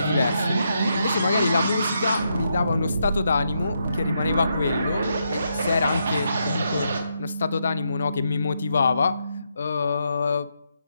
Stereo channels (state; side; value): inverted; both; correlation -0.80